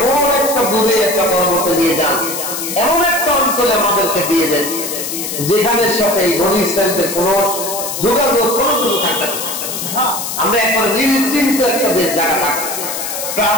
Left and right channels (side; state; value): left; noise; hiss, 5 dB below the sound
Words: একটা দূরে একটা পর্বতে নিয়ে যান এমন একটা অঞ্চলে আমাদেরকে দিয়ে দেন যেখানে সাথে এই বনি ইসরাইলদের কোনো যোগাযোগ কোনো কিছু থাকবে না আমরা এখন নিশ্চিন্ত একটা জায়গা থাকবো